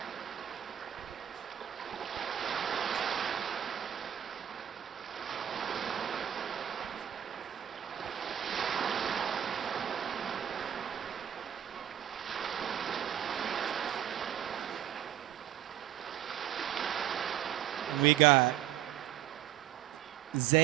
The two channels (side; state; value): left; quieter; 10.8 dB